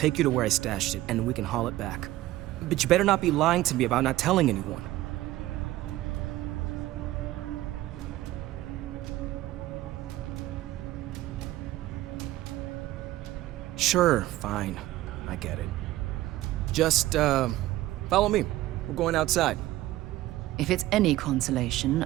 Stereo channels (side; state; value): left; quieter; 16.0 dB